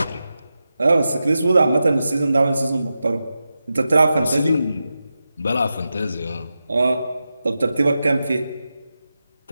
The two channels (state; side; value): inverted; both; correlation -0.91